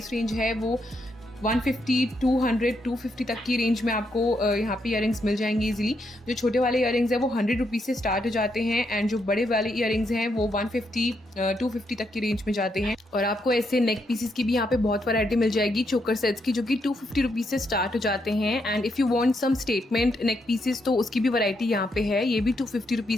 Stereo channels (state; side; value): normal; both; correlation 0.79